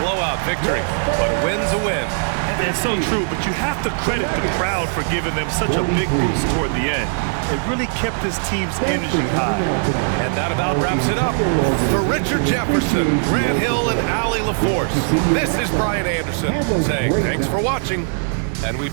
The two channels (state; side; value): silent; left; 64 dB below the other